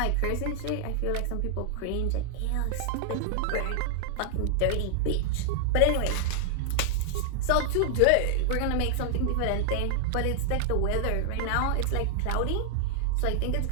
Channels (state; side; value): different; both; correlation -0.01